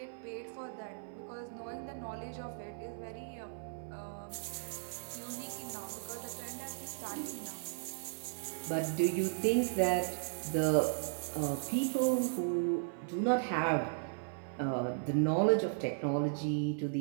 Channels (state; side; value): silent; left; 54 dB below the other